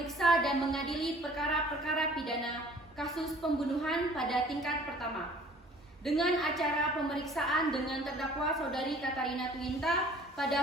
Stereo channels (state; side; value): normal; both; correlation 0.52